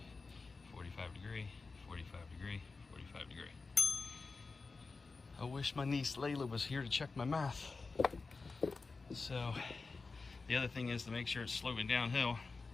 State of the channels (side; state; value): right; quieter; 4.1 dB